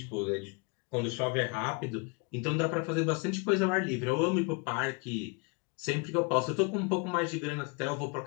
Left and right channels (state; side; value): quieter; right; 32.1 dB